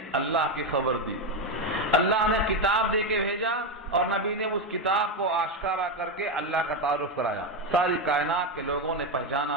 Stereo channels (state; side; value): normal; both; correlation 0.10